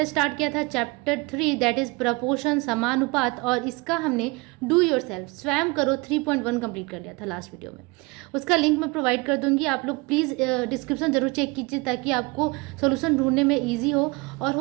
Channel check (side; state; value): left; quieter; 26.1 dB